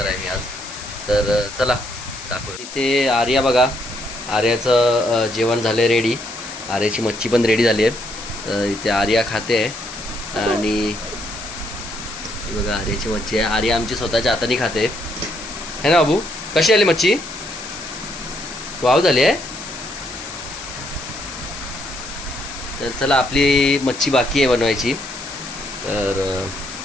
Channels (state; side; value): noise; left; hiss, 12 dB below the sound